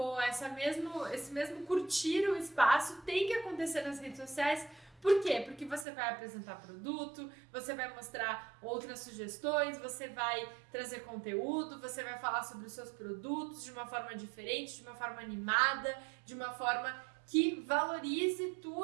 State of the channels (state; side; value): drops out; left; at 5.9 s